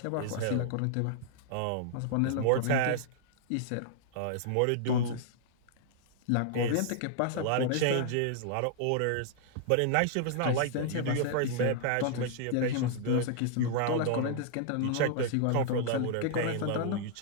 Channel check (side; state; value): both; different; correlation -0.01